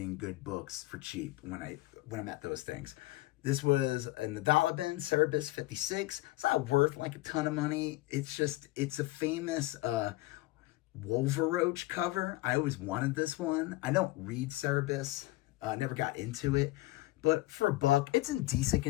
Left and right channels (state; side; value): quieter; right; 18.9 dB